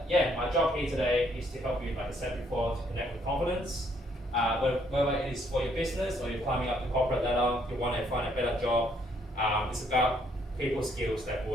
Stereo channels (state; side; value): normal; both; correlation 0.68